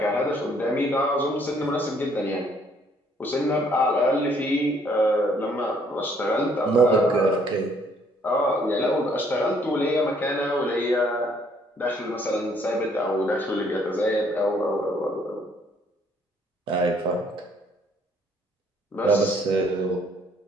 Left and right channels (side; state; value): both; normal; correlation 0.65